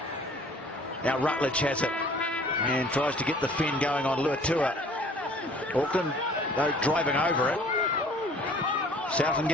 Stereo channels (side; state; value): both; normal; correlation 0.52